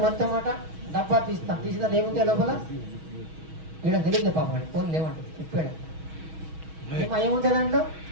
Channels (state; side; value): late; left; 6.3 ms